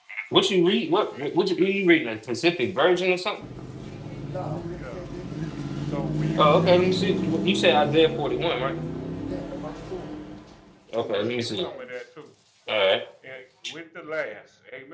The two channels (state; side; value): identical; both; correlation 1.00